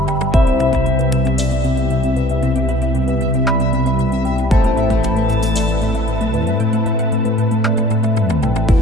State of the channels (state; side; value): normal; both; correlation 0.53